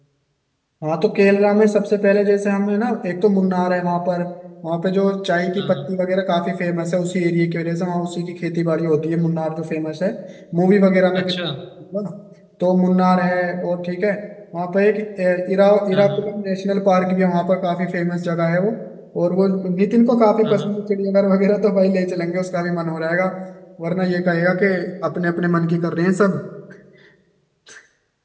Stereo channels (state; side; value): identical; both; correlation 1.00